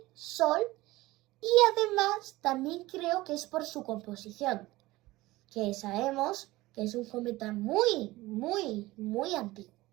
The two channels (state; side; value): quieter; left; 18.9 dB